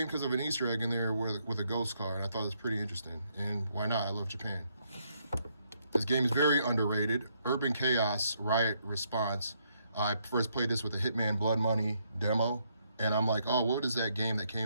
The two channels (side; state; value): both; inverted; correlation -0.74